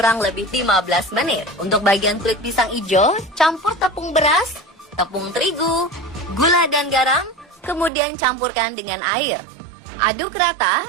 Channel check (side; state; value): left; drops out; at 7.9 s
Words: lebih 15 menit. Untuk bagian kulit pisang hijau, campur tepung beras, tepung terigu, gula dan garam, kemudian campurkan dengan air. Aduk rata